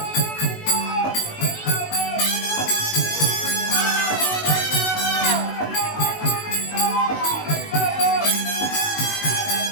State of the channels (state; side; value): late; right; 19 ms